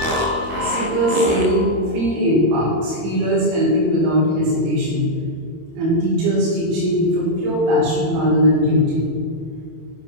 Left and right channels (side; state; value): left; late; 24 ms